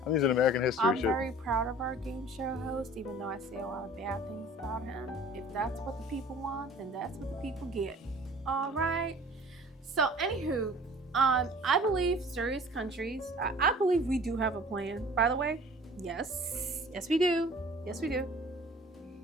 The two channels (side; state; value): both; normal; correlation 0.47